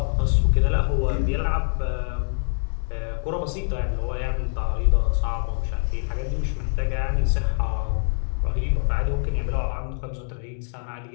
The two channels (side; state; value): right; silent; digital silence